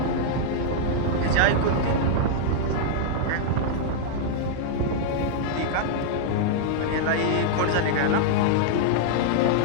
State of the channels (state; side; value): different; both; correlation -0.01